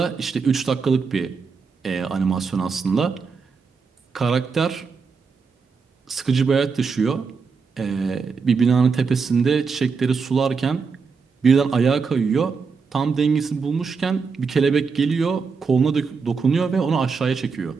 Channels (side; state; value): left; quieter; 5.2 dB